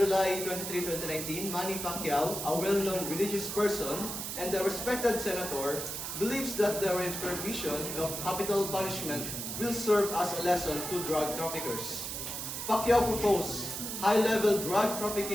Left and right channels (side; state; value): right; noise; hiss, 5 dB below the sound